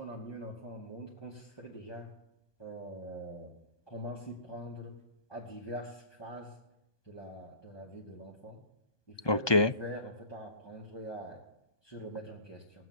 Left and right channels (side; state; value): right; late; 1.2 ms